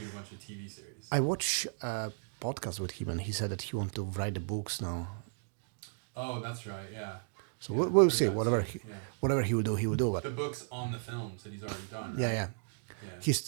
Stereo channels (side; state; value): left; silent; digital silence